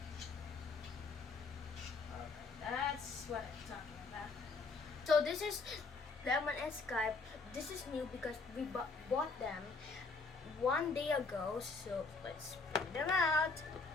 Okay, that's what I'm talking about. So this is Lemon and Skype. This is new because we bought them 1 day ago. So let's bring them out.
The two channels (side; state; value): right; quieter; 4.1 dB